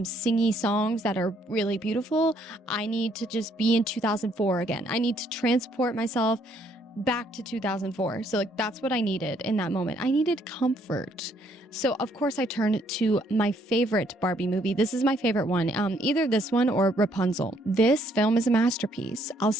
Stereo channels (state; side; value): normal; both; correlation 0.68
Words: singy songs that are really beautiful. I need to just be in 2004 again. I need to transport myself back to 2004. So like that's what I needed in that moment. I needed comfort. So of course I turned to my favorite Barbie movie. This is my favorite one. Either this one or Rapunzel. This film is a masterpiece. I'll